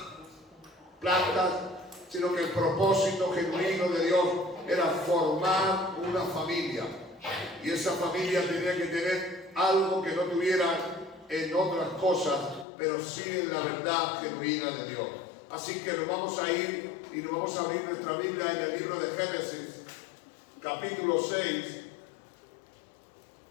plantas, sino que el propósito genuino de Dios era formar una familia. Y esa familia tenía que tener algo que no tuviera en otras cosas, pero sí en la verdad genuina de Dios. Así que nos vamos a ir y nos vamos a abrir nuestra Biblia en el libro de Génesis, capítulo 6.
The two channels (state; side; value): drops out; right; at 12.7 s